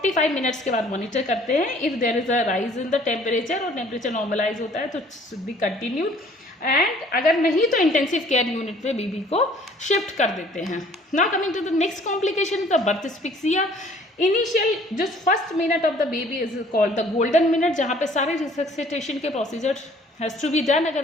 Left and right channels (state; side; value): normal; both; correlation 0.55